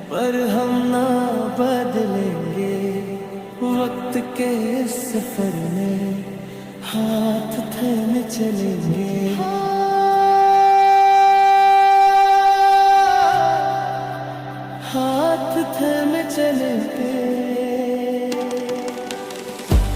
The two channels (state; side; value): identical; both; correlation 1.00